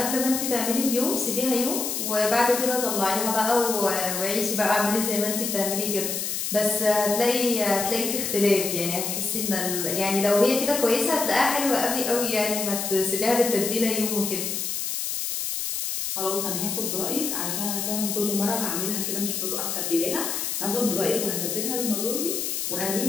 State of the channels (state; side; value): noise; left; hiss, 2 dB below the sound